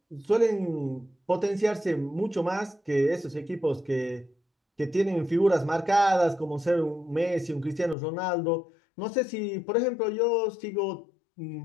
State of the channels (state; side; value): drops out; right; at 8.0 s